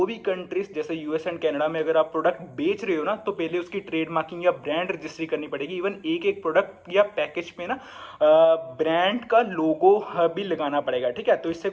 भी कंट्रीज जैसे यूएस एंड कनाडा में अगर आप प्रोडक्ट बेच रहे हो ना, तो पहले उसकी ट्रेड मार्किंग या ब्रांड रजिस्ट्री करनी पड़ेगी। इवन एक प्रोडक्ट या पैकेज पे ना ब्रांड का लोगो भी लगाना पड़ेगा, ठीक है। तो इससे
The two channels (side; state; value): both; identical; correlation 1.00